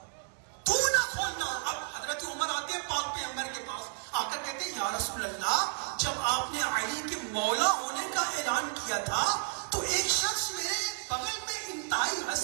تو نہ کھولنا. اب حضرت عمر آتے ہیں پاک پیغمبر کے پاس، آ کر کہتے ہیں یا رسول اللہ، جب آپ نے علی کے مولا ہونے کا اعلان کیا تھا تو ایک شخص میرے بغل میں انتہائی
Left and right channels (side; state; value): left; silent; digital silence